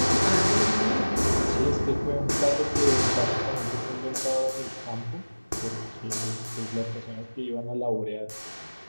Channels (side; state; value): both; inverted; correlation -1.00